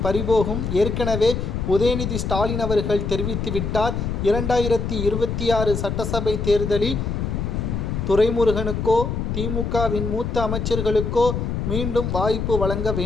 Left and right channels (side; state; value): left; noise; rumble, 2 dB below the sound